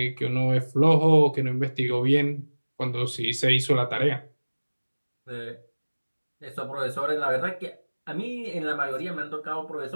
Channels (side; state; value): both; inverted; correlation -1.00